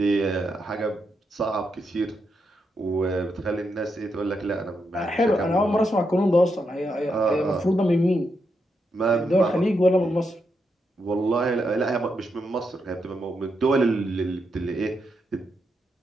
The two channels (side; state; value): both; normal; correlation 0.82